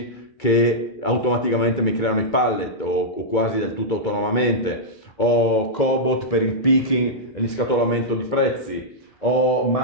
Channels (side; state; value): right; late; 2.3 ms